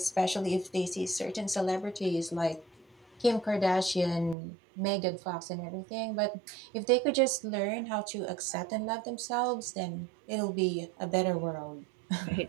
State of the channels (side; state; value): left; drops out; at 4.4 s